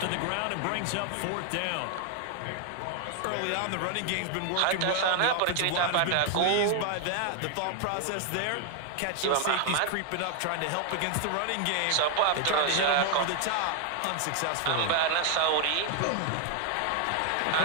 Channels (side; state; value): both; different; correlation 0.00